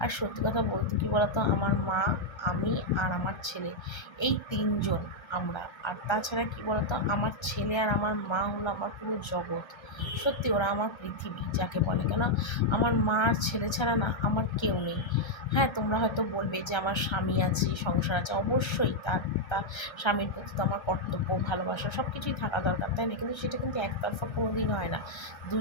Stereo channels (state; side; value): late; right; 1.3 ms